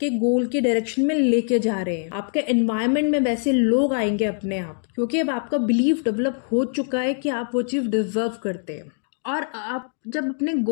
गोल की डायरेक्शन में लेके जा रहे हैं। आपके एनवायरनमेंट में वैसे लोग आएंगे अपने आप, क्योंकि अब आपका बिलीफ डेवलप हो चुका है कि आप वो चीज़ डिजर्व करते हैं। और आप जब अपने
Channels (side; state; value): right; silent; 61 dB below the other